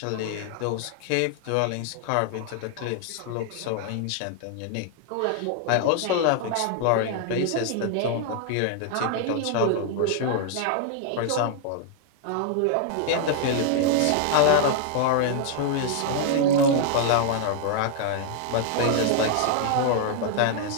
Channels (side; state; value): both; different; correlation 0.00